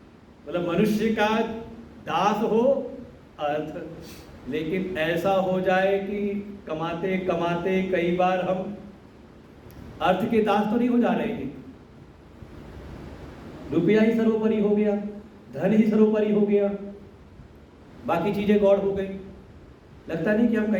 मतलब मनुष्य का दास हो अर्थ। लेकिन ऐसा हो जाए कि कमाते कमाते कई बार हम अर्थ के दास तो नहीं हो जा रहे हैं, रुपया ही सर्वोपरि हो गया, धन ही सर्वोपरि हो गया, बाकी चीजें गौड़ हो गई। लगता नहीं कि हम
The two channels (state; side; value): identical; both; correlation 1.00